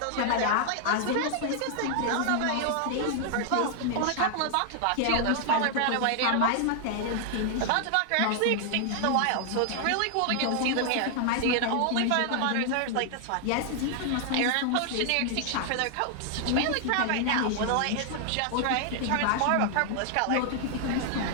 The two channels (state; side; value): different; both; correlation 0.00